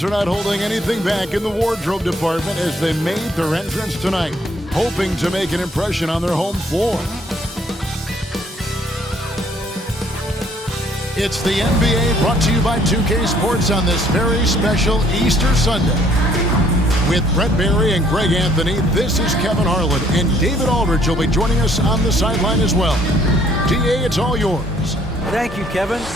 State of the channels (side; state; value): both; normal; correlation 0.63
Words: are not holding anything back in the wardrobe department as they made their entrance tonight, hoping to make an impression on their home floor. It's the NBA brought to you by 2K Sports on this very special Easter Sunday. With Brett Barry and Greg Anthony, this is Kevin Harlan, and David Aldridge will be joining us on the sideline as well. DA, it's all yours. Thank you, Kevin.